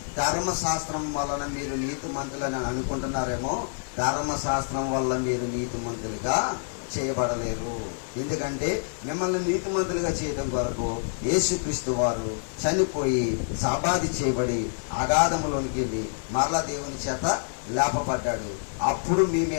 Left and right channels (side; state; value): right; silent; digital silence